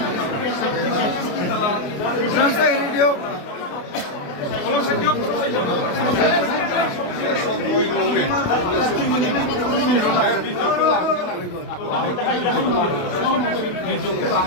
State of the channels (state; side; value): late; right; 28 ms